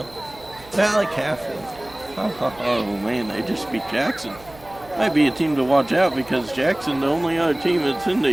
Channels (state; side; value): noise; right; hum, 22 dB below the sound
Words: Valley Catholic. Oh, man, they just beat Jackson. Might be a team to watch out, because Jackson, the only other team that's in